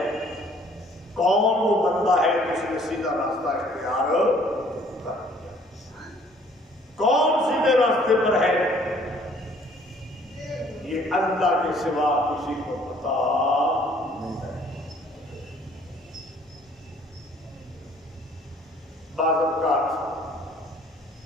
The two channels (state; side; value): normal; both; correlation 0.58